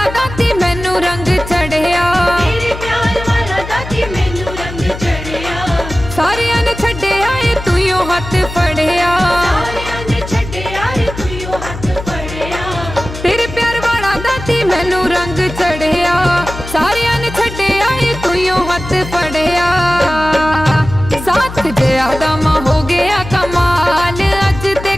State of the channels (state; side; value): noise; left; hum, 10 dB below the sound